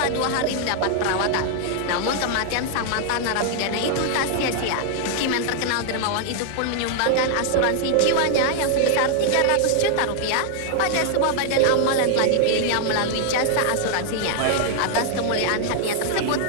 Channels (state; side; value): different; both; correlation 0.00